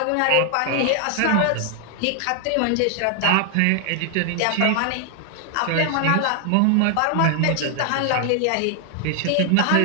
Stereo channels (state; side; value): different; both; correlation 0.00